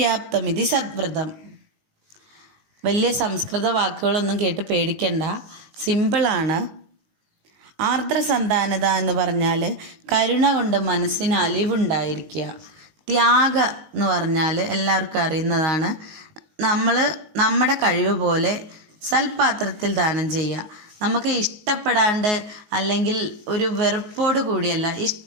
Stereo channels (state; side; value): late; left; 19 ms